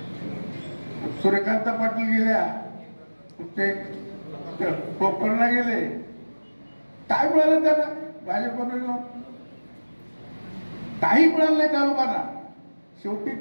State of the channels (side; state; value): both; inverted; correlation -1.00